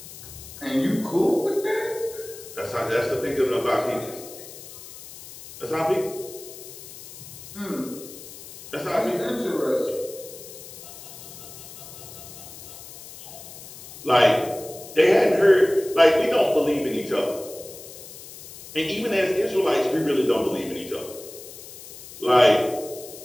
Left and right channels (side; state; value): left; noise; hiss, 15 dB below the sound